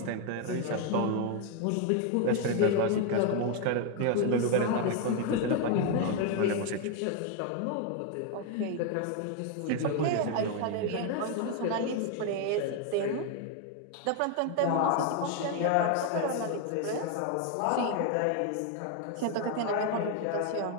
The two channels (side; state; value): both; different; correlation 0.01